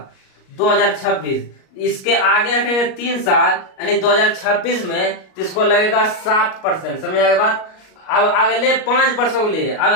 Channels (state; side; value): late; right; 38 ms